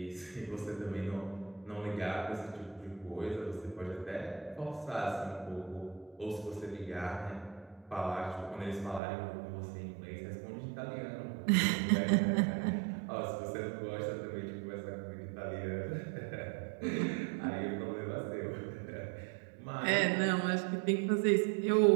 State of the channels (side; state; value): left; drops out; at 9.0 s